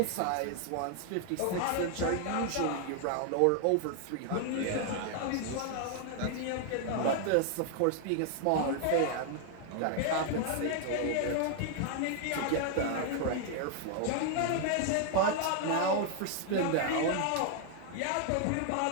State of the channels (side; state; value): both; different; correlation 0.00